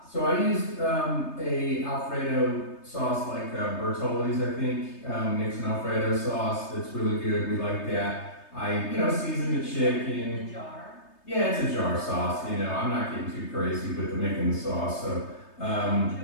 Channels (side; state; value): right; late; 3.3 ms